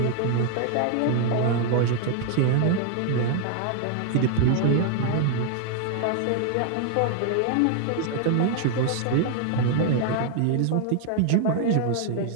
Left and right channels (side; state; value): both; different; correlation 0.00